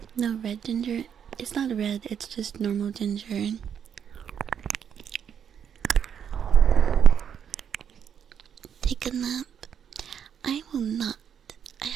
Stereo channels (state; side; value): quieter; left; 8.2 dB